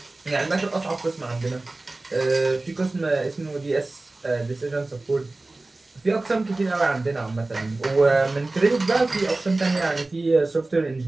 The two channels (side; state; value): left; quieter; 3.1 dB